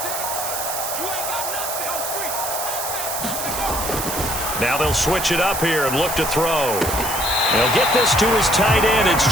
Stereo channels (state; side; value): noise; right; hiss, 4 dB below the sound